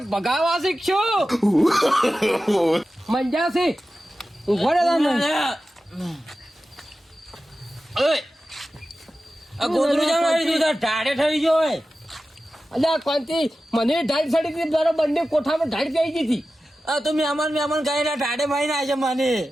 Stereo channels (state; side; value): normal; both; correlation 0.94